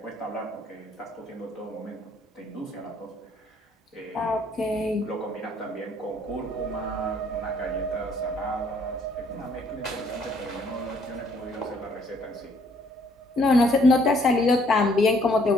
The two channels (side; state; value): both; normal; correlation 0.64